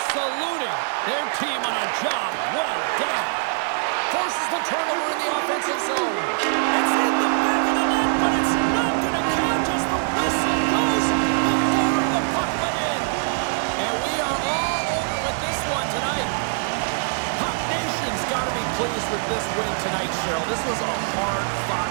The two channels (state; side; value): silent; left; 63 dB below the other